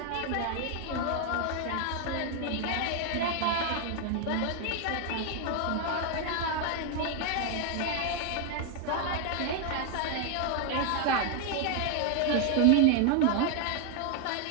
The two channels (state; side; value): different; both; correlation 0.01